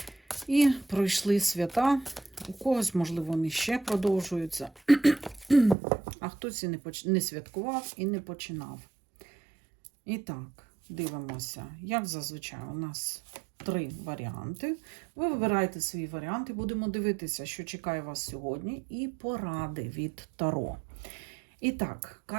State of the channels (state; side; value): drops out; left; at 5.8 s